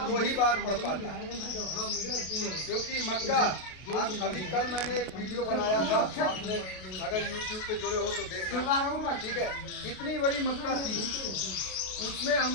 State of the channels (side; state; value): right; late; 33 ms